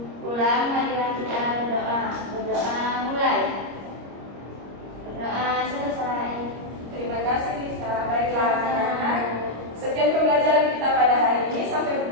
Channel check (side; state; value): left; late; 25 ms